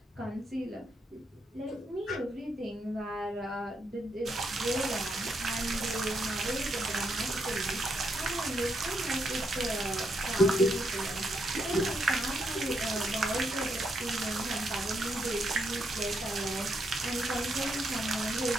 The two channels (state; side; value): normal; both; correlation 0.78